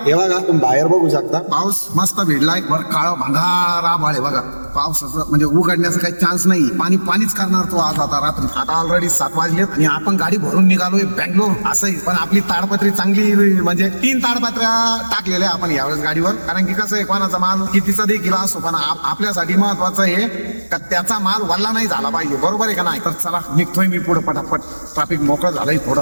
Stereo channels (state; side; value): inverted; both; correlation -1.00